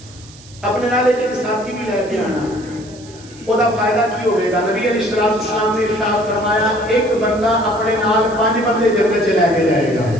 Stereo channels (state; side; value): noise; right; hiss, 22 dB below the sound